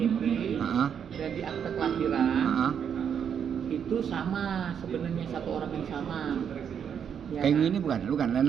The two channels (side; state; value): left; quieter; 7.9 dB